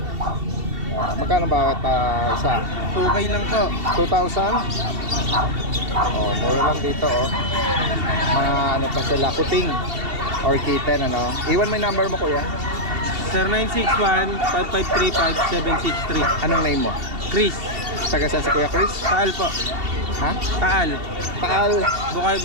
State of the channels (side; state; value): left; late; 2.7 ms